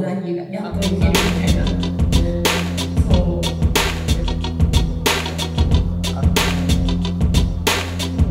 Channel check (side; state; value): both; identical; correlation 1.00